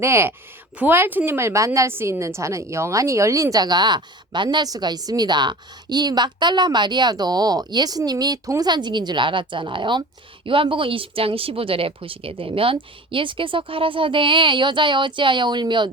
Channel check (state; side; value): normal; both; correlation 0.39